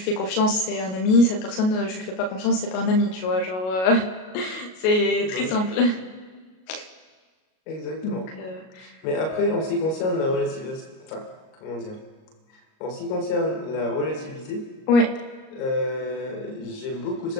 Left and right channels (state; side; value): late; right; 38 ms